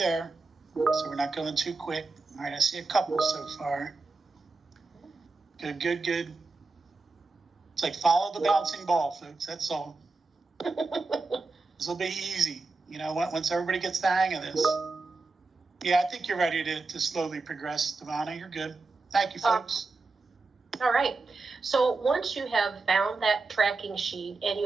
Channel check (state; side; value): quieter; left; 3.7 dB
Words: so we're not going too quick. All right, I see a couple so far. Good. It's like follow the bouncing ball, folks. That's all. This will be easy, once everybody gets the hang of this. Yeah, I think you're ready to slowly progress, Devonna. You're good. Thank you, folks. All right. So once you have found that tracking sheet and